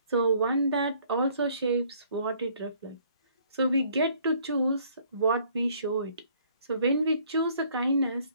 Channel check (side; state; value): both; inverted; correlation -0.61